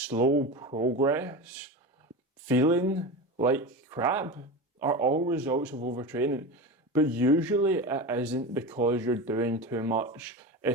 progress, feeling like crap are all results of overtraining. But usually it isn't because you're doing too much,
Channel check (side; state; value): both; normal; correlation 0.25